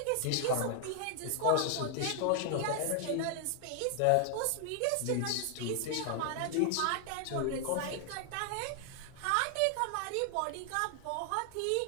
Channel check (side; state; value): both; different; correlation 0.00